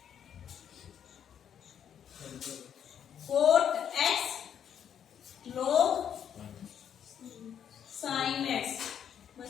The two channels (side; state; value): right; quieter; 8.8 dB